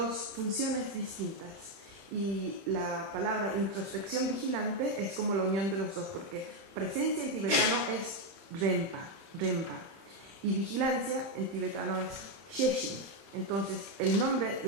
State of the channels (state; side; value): late; left; 30 ms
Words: funciones distintas, y la palabra introspección vigilante es como la unión de los dos, porque presencia en tibetano es rempa, y vigilancia en tibetano es sheshin. Entonces, el nombre,